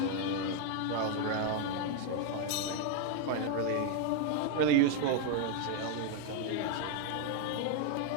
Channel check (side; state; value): both; different; correlation 0.01